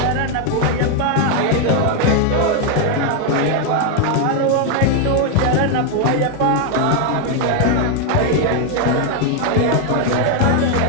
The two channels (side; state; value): both; different; correlation 0.01